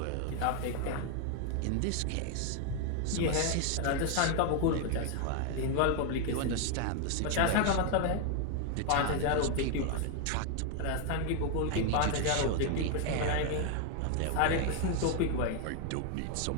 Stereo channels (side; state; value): both; different; correlation 0.00